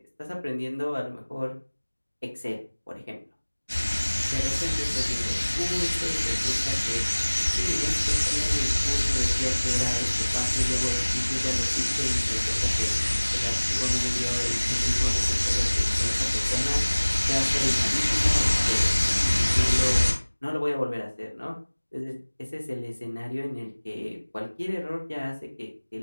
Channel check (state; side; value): inverted; both; correlation -1.00